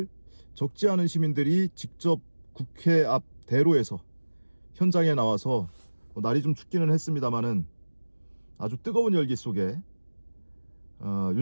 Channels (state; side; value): inverted; both; correlation -1.00